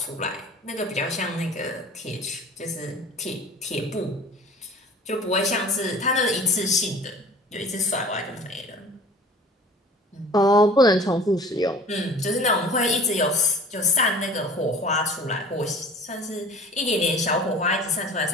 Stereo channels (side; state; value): both; normal; correlation 0.44